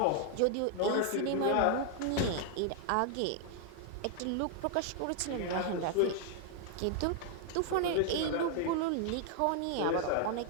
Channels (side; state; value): both; different; correlation 0.00